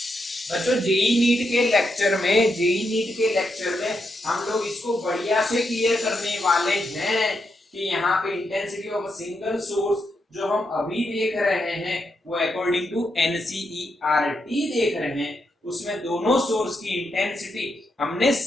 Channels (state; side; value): normal; both; correlation 0.82